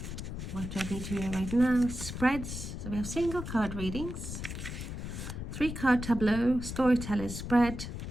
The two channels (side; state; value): left; noise; rumble, 7 dB below the sound